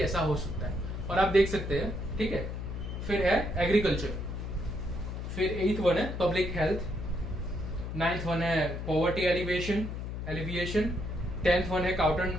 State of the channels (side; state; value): left; noise; hum, 5 dB below the sound